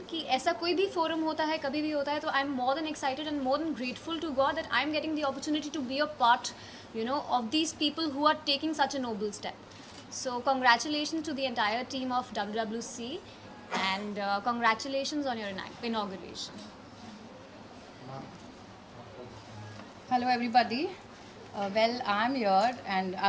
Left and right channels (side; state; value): both; identical; correlation 1.00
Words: कि ऐसा कोई भी forum होता है, कभी भी होता है, तो I'm more than excited and more than grateful to God that I'm getting the opportunity to be a part of these people who are taking such a noble step. So congratulations to the entire team of WWC and congratulations on your inauguration. Hello everybody. Well, I'm here and I